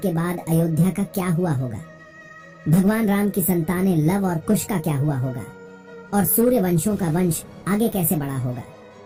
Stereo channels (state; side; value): identical; both; correlation 1.00